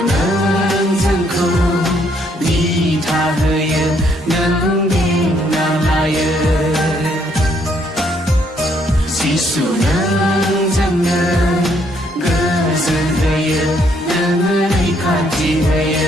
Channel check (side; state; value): both; normal; correlation 0.69